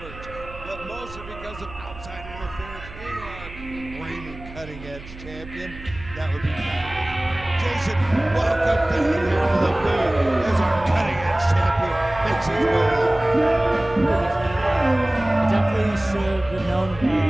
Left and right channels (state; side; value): noise; right; hum, 16 dB below the sound